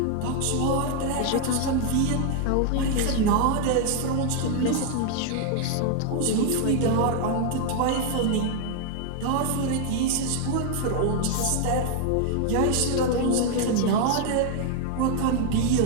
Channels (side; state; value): both; different; correlation 0.00